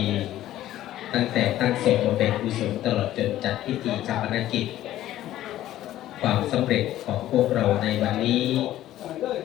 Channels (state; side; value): quieter; right; 13.7 dB